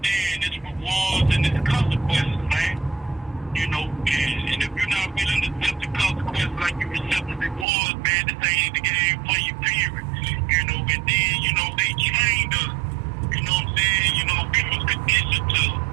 its rewards and its consequences, man. You know, and if you're not willing to accept the consequences like you accept the rewards, man, this ain't the game for you, period. You know, and then, you know, they trained us. You know what I'm saying? You know, we was conditioned to,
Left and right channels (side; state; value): left; drops out; at 7.7 s